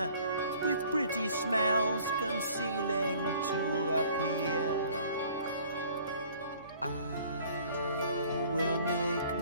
with pretty smells concealing to appeal. I will make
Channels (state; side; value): inverted; both; correlation -0.54